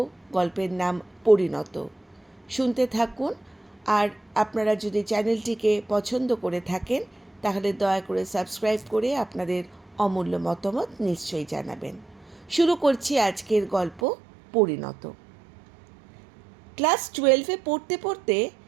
গল্পের নাম পরিণত। শুনতে থাকুন। আর আপনারা যদি চ্যানেলটিকে পছন্দ করে থাকেন তাহলে দয়া করে সাবস্ক্রাইব করে আপনাদের অমূল্য মতামত নিশ্চয়ই জানাবেন। শুরু করছি আজকের গল্প পরিণত। ক্লাস 12-এ পড়তে পড়তে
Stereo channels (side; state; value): left; drops out; at 14.0 s